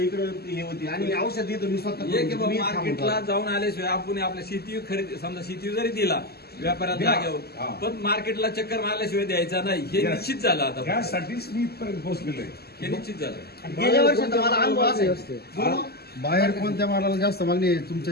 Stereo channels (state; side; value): late; right; 0.46 ms